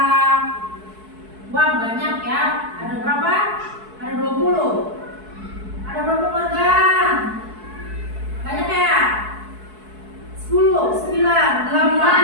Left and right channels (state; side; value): late; left; 4.6 ms